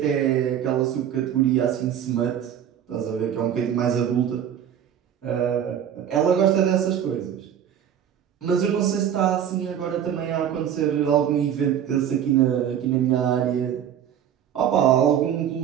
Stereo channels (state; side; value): quieter; left; 9.5 dB